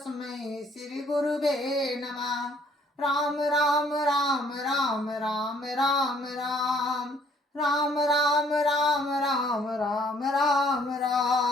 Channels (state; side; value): normal; both; correlation 0.61